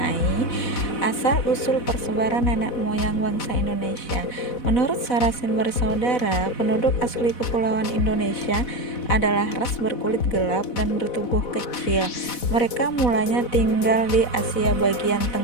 asal-usul persebaran nenek moyang bangsa Indonesia. Menurut Sarasin bersaudara, penduduk asli Kepulauan Indonesia adalah ras berkulit gelap dan bertubuh kecil. Mereka mulanya tinggal di Asia bagian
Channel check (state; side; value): late; right; 4.1 ms